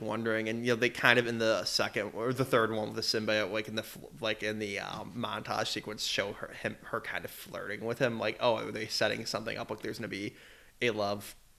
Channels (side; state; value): both; identical; correlation 1.00